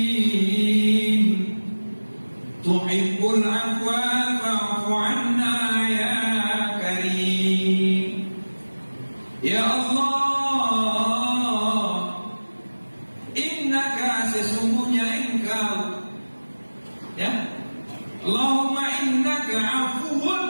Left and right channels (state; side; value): inverted; both; correlation -1.00